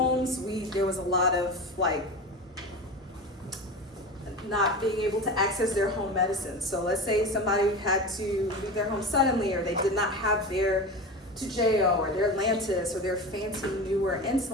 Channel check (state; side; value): normal; both; correlation 0.28